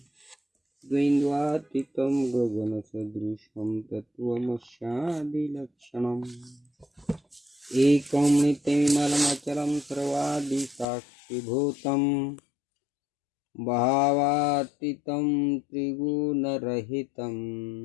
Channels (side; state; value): right; drops out; at 10.9 s